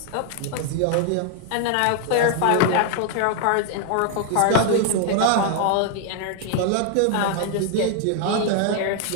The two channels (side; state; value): both; different; correlation 0.00